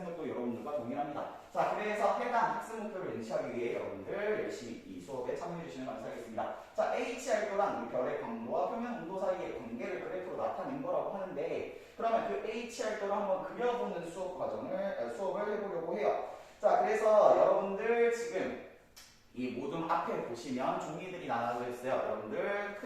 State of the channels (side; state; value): both; identical; correlation 1.00